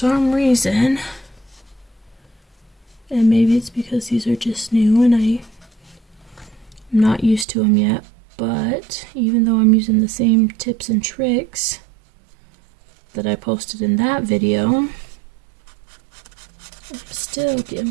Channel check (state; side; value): drops out; left; at 7.5 s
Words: reason, and maybe it's because these are just new and I'm not used to them yet, but even though I'm using the same tips and tricks that I posted in that video, I'm still getting